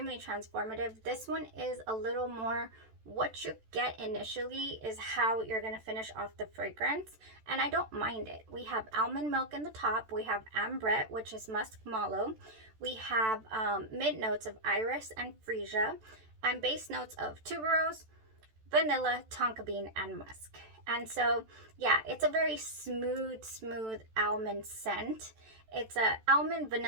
transformative. This one is a little more, what you get initially is how you're going to finish off the fragrance, and I don't mind it. We have almond milk in the top, we have ambrette, which is musk mallow, we have mid notes of iris and freesia, and base notes of tuberose, vanilla, tonka bean, and musk. And so, yeah, it's a very smooth almond scent. It's a almond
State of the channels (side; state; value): left; late; 14 ms